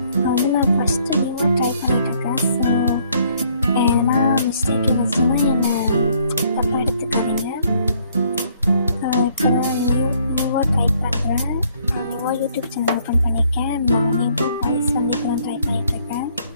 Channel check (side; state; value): both; inverted; correlation -0.65